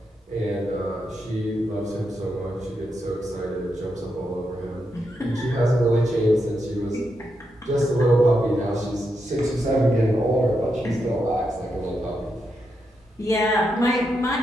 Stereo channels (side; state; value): both; normal; correlation 0.84